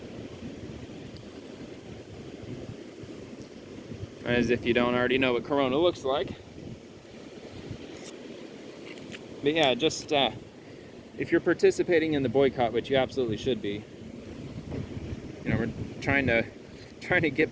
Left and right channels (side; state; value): both; identical; correlation 1.00